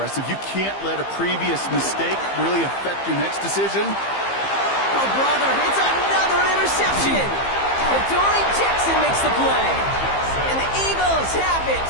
You can't let a previous mistake really affect your next decision. Oh, brother, it's another interception. Adoree Jackson makes the play. And the Eagles have it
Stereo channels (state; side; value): late; right; 15 ms